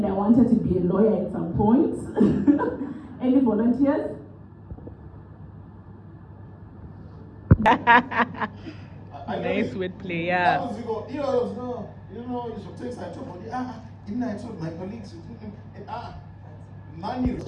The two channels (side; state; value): both; identical; correlation 1.00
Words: I wanted to be a lawyer at some point. Any volunteers? Nice wordplay, yeah. You know, you should take side to body. Didn't I told my colleagues? Money.